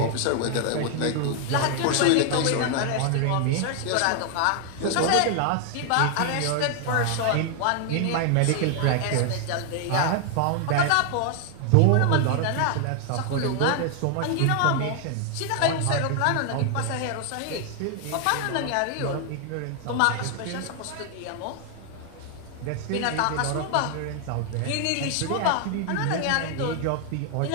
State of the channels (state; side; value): different; both; correlation 0.00